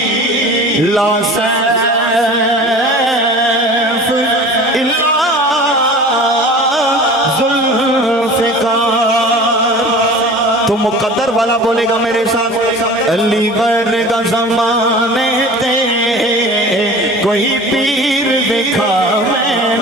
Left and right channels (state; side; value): normal; both; correlation 0.40